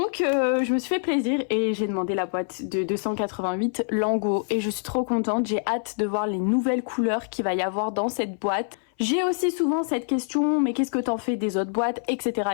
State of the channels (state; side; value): silent; right; 59 dB below the other